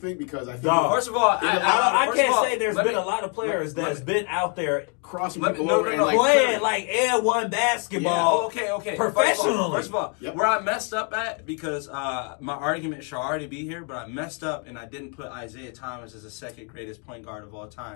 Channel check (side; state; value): right; quieter; 39.4 dB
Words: because I think. First of all, I can't say there's been a lot of players that's been out there crossing people over and playing like N1 basketball. Okay. Professionally. First of all, where I messed up at, because my argument should already be here, but I messed up and I didn't put Isaiah Thomas as the second greatest point guard of all